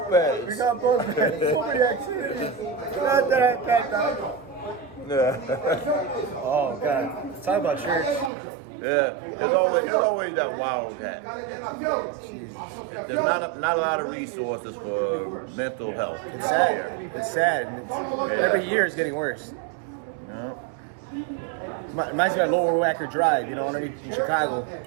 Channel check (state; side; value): drops out; left; at 8.3 s